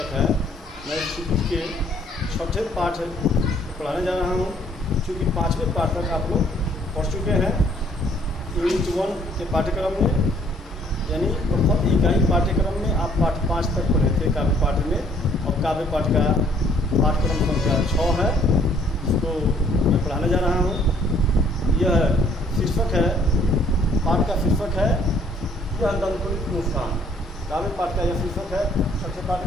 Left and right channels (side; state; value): both; normal; correlation 0.61